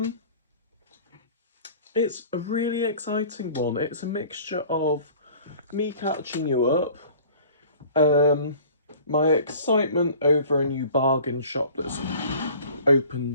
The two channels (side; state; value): both; inverted; correlation -0.47